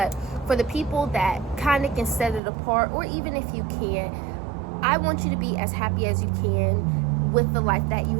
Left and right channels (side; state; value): left; drops out; at 2.4 s